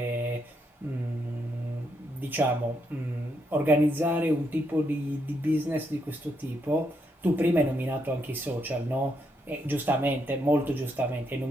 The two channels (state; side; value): normal; both; correlation 0.78